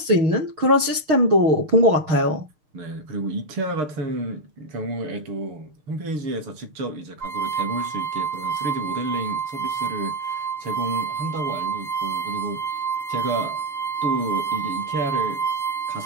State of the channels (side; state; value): left; late; 6.6 ms